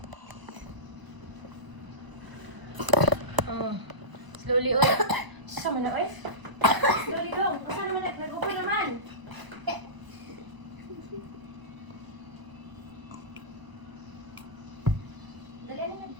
Slowly oy. Sama na oy. Slowly dong. Asa naman nag-upo naman? Dali na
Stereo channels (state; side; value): late; left; 1.0 ms